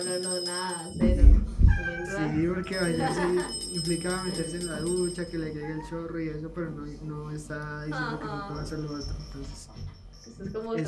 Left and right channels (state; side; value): identical; both; correlation 1.00